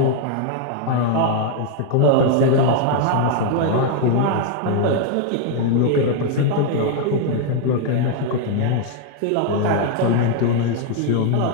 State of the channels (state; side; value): different; both; correlation 0.00